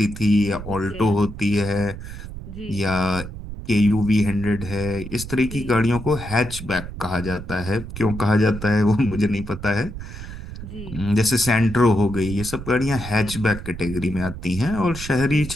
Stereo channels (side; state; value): right; noise; rumble, 10 dB below the sound